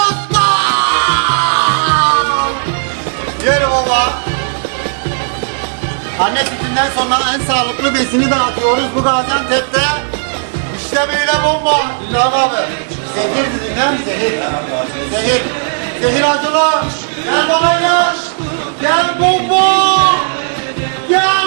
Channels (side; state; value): left; silent; digital silence